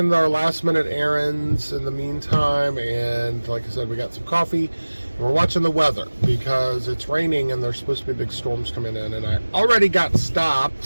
our last minute errands in the meantime, and like I said, we got some coffee and we're watching the weather because it's raining and there's supposed to be big storms coming in, and I already got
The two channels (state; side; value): inverted; both; correlation -1.00